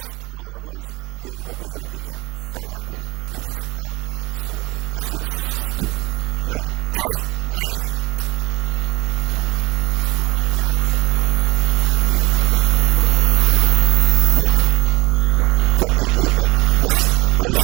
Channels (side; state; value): left; quieter; 23.2 dB